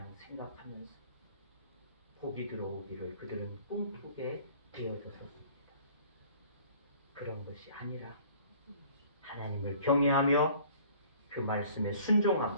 생각하면서 복이 들어오기를 그들은 꿈꾸게 되어졌었습니다. 그런 것이 아니라 하나님을 경외하며 그 말씀에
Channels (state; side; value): inverted; both; correlation -0.52